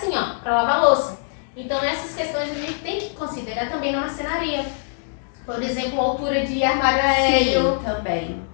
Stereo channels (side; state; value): right; silent; digital silence